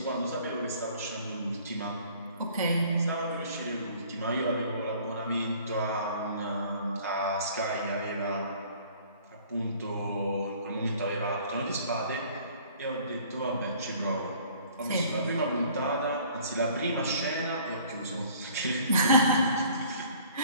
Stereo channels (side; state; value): both; inverted; correlation -0.54